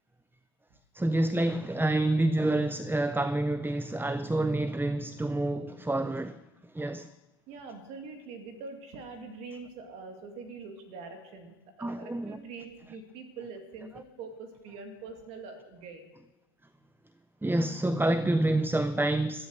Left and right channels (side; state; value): both; normal; correlation 0.89